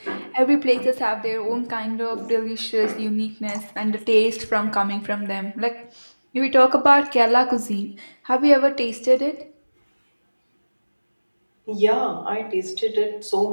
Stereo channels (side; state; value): both; inverted; correlation -1.00